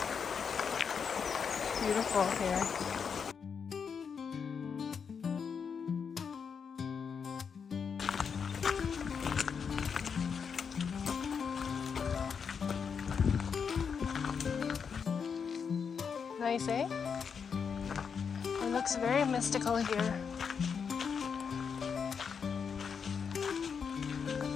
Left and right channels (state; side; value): quieter; right; 6.4 dB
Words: Beautiful here. Nice, eh? It looks very mystical here.